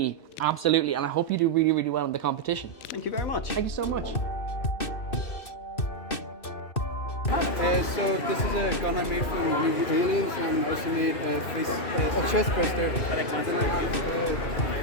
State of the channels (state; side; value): late; right; 2.6 ms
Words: absolutely, and I hope you do really, really well in the competition. Thank you very much. Thank you so much. So this is a gun I made from using aliens, and I also made a chest burster, and then I have